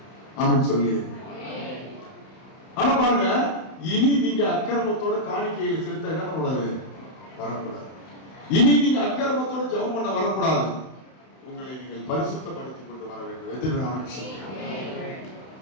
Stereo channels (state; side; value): late; right; 31 ms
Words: ஆமென் சொல்லி. ஆனா பாருங்க, இனி நீங்க அக்கிரமத்தோட காணிக்கையை செலுத்த என்ன பண்ணக்கூடாது? வரக்கூடாது. இனி நீங்க அக்கிரமத்தோட ஜெபம் பண்ண வரக்கூடாது. உங்களை நீங்கள் பரிசுத்தப்படுத்திக் கொண்டு வர வேண்டும். எதிர்ப்பு சொல்லுங்க.